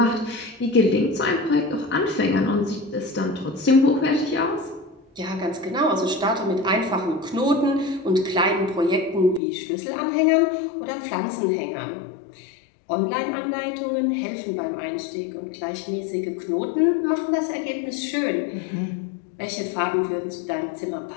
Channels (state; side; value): drops out; right; at 9.4 s